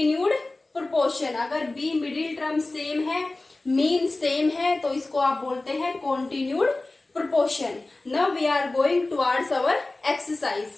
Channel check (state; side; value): quieter; right; 3.0 dB